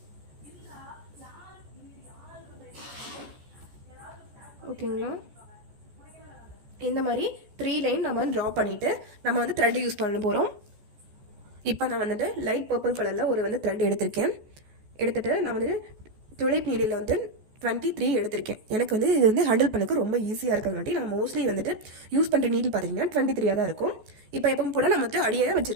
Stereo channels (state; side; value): late; left; 14 ms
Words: ஓகேங்களா, இந்த மாதிரி 3 லைன் நம்ம ட்ரா பண்ணிவிட்டு நம்ம வந்து த்ரெட் யூஸ் பண்ண போகிறோம். இப்போ நான் வந்துட்டு லைட் பர்பிள் கலரில் ஒரு வந்து த்ரெட் எடுத்திருக்கேன். எடுத்துகிட்டு நான் வந்துட்டு துளைப் நீடில் வந்து 23 எடுத்திருக்கேன். எனக்கு வந்து இது வந்து ஹேண்டில் பண்ணக்கு ரொம்ப ஈஸியாக இருக்கிறங்காட்டி நான் மோஸ்ட்லி வந்துட்டு யூஸ் பண்ணுற நீடில் பார்த்தீங்கன்னா 23 தான் இருக்கும். இப்போ எப்பவும் கூட நான் வந்து அடியே